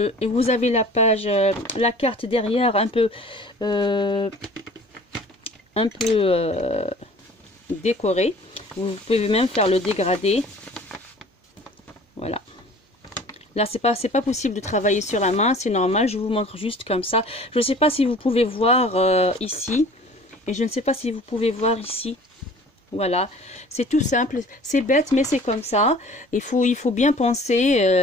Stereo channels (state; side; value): normal; both; correlation 0.47